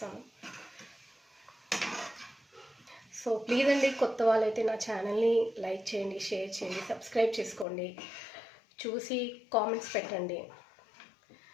సో ప్లీజ్ అండి, కొత్త వాళ్ళైతే నా ఛానల్ని లైక్ చేయండి, షేర్ చేయండి, సబ్స్క్రైబ్ చేసుకోండి, చూసి కామెంట్స్ పెట్టండి.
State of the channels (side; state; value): right; drops out; at 7.7 s